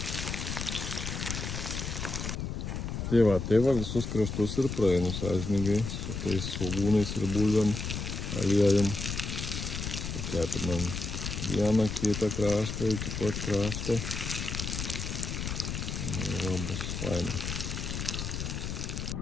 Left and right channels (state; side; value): noise; left; rumble, 4 dB below the sound